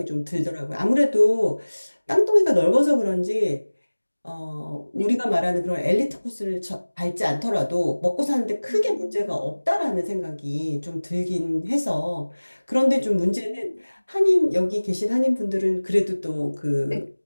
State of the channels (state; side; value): inverted; both; correlation -1.00